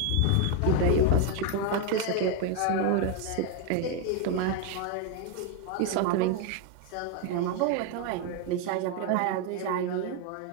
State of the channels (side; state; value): both; different; correlation 0.01